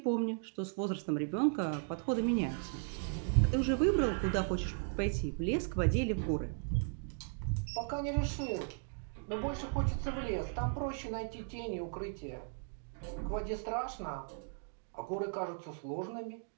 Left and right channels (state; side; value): silent; left; 53 dB below the other